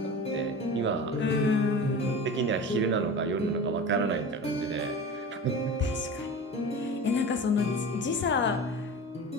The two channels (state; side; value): normal; both; correlation 0.33